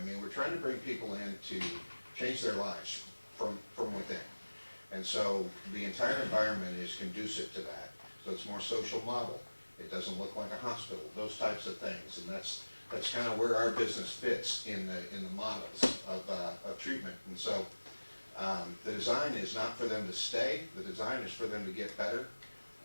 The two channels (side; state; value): both; inverted; correlation -1.00